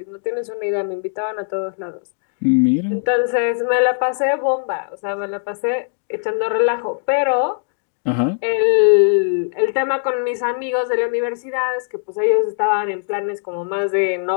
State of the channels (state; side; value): silent; right; 66 dB below the other